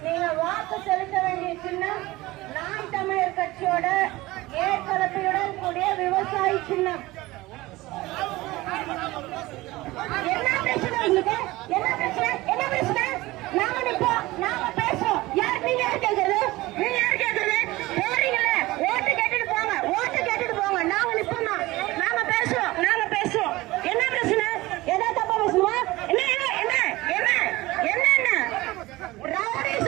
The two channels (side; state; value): left; quieter; 19.4 dB